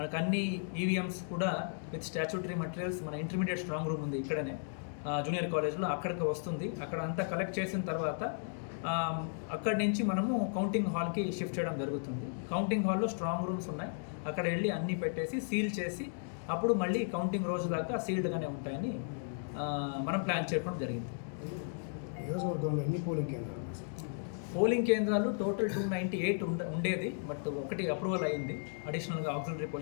అన్ని ఈవీఎంస్ కూడా విత్ స్టాచ్యూటరీ మెటీరియల్స్ మన ఇంటర్మీడియట్ స్ట్రాంగ్ రూమ్ ఉంది ఇక్కడనే జూనియర్ కాలేజ్లో, అక్కడికి వస్తుంది. అక్కడ అంతా కలెక్ట్ చేసిన తర్వాత అక్కడి నుంచి మనము కౌంటింగ్ హాల్కి షిఫ్ట్ చేయడం జరుగుతుంది. కౌంటింగ్ హాల్లో స్ట్రాంగ్ రూమ్స్ ఉన్నాయి. అక్కడ వెళ్ళి అన్నీ పెట్టేసి సీల్ చేసి అప్పుడు మళ్ళీ కౌంటింగ్ రోజు దాకా సీల్డ్గానే ఉంటాయని మనం ప్లాన్ చేయడం జరిగింది. నియోజకవర్గంలో ఎన్ని పోలింగ్ కేంద్రాలు టోటల్ 298 ఉండేది. బట్ ఒకటి అప్రూవల్ అయింది అడిషనల్గా ఆక్సిలరీ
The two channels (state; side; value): silent; right; digital silence